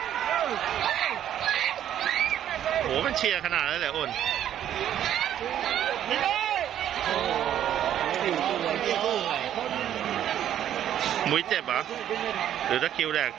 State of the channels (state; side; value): quieter; left; 10.8 dB